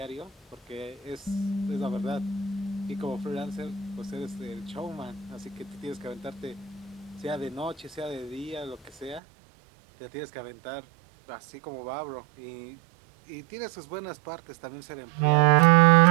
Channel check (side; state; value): left; drops out; at 9.2 s